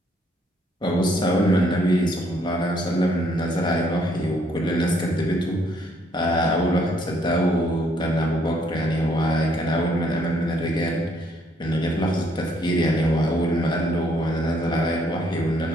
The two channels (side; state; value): both; normal; correlation 0.68